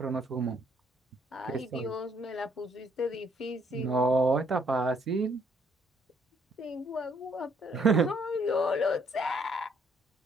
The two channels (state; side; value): normal; both; correlation 0.68